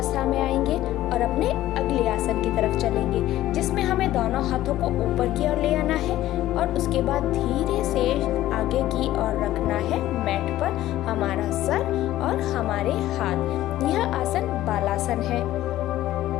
में आएंगे और अपने अगले आसन की तरफ चलेंगे, जिसमें हमें दोनों हाथों को ऊपर की ओर ले आना है और उसके बाद धीरे से आगे की ओर रखना है मैट पर हमारा सर और हमारे हाथ। यह आसन बालासन है।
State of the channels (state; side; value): quieter; right; 14.4 dB